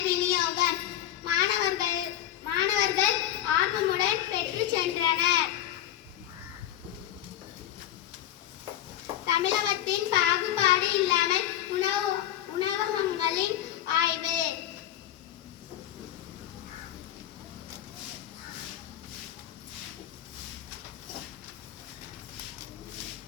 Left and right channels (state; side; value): quieter; right; 12.2 dB